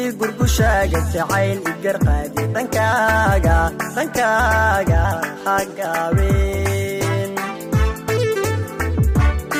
gurgushaaga jacayl igarqaadi dhankaaga hagaabeen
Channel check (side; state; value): both; identical; correlation 1.00